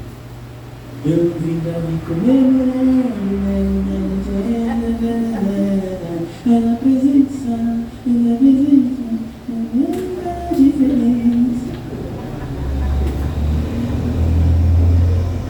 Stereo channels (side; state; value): both; identical; correlation 1.00